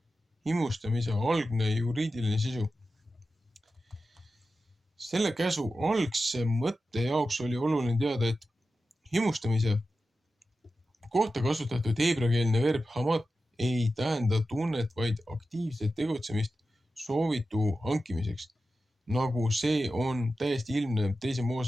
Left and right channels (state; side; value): normal; both; correlation 0.92